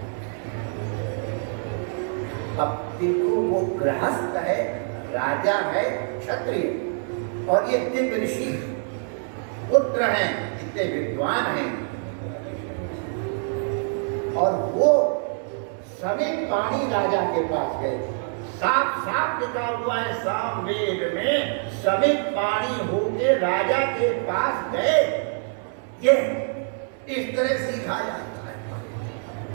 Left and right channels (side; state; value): left; silent; 57 dB below the other